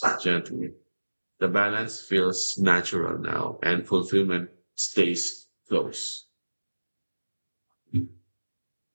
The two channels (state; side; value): inverted; both; correlation -1.00